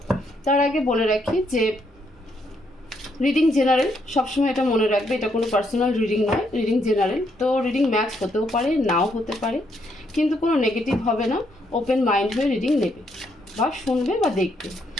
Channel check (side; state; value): both; normal; correlation 0.74